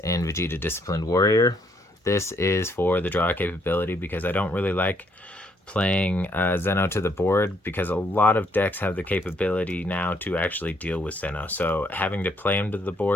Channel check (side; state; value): both; normal; correlation 0.70